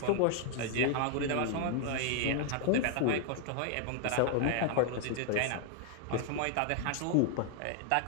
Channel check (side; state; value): both; different; correlation 0.00